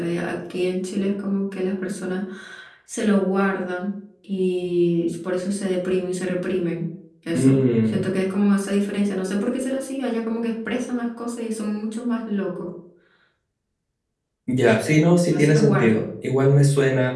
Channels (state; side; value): identical; both; correlation 1.00